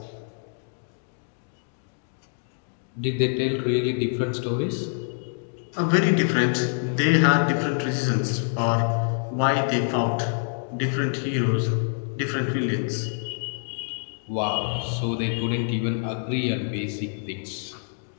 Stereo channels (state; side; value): silent; right; 61 dB below the other